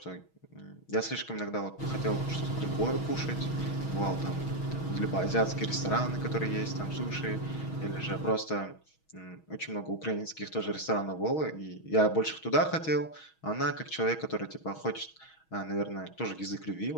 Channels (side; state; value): right; late; 6.3 ms